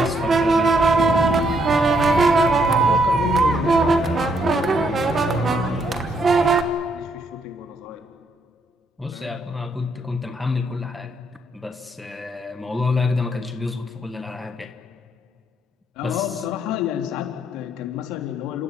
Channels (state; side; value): normal; both; correlation 0.73